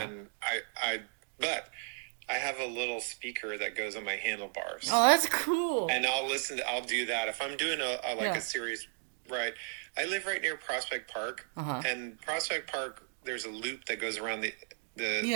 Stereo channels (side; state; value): left; silent; digital silence